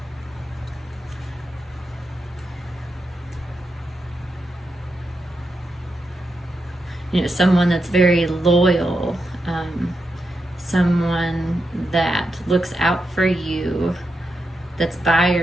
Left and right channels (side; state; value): both; normal; correlation 0.86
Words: you know, someone that's very loyal, someone that looks out for you, that's by